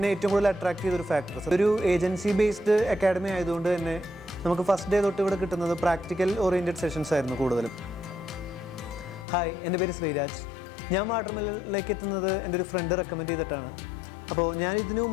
ഏറ്റവും കൂടുതൽ അട്രാക്ട് ചെയ്തൊരു ഫാക്ടർ. ഒരു ഏജൻസി ബേസ്ഡ് അക്കാഡമി ആയതുകൊണ്ട് തന്നെ നമുക്ക് ഫസ്റ്റ് ഡേ തൊട്ട് ഇവിടെ കിട്ടുന്നത് പ്രാക്ടിക്കൽ ഓറിയൻറ്റഡ് സെഷൻസ് ആയിരുന്നു കൂടുതലും. ഹായ്, എൻ്റെ പേര് ശ്രീരാജ്. ഞാൻ വാട്ടർമെലനിലേക്ക് എത്തുന്നത് എൻ്റെ ഒരു ഫ്രണ്ട് റെക്കമെൻഡ് ചെയ്തിട്ടാണ്. അപ്പോൾ ഞാൻ ഇതിനു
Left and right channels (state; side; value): drops out; right; at 9.2 s